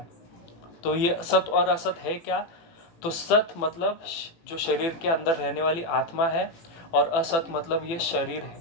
तो ये सत और असत है क्या? तो सत मतलब जो शरीर के अंदर रहने वाली आत्मा है, और असत मतलब ये शरीर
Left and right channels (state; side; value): late; right; 18 ms